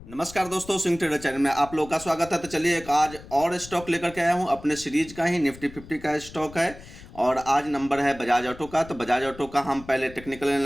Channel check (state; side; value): noise; left; rumble, 18 dB below the sound